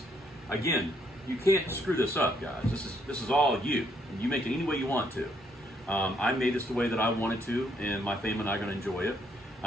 Again, you can't screw this up, guys. This is all you. You make it any way you want to. I made this the way that I wanted to, and my family and I are going to enjoy it.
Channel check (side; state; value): both; normal; correlation 0.71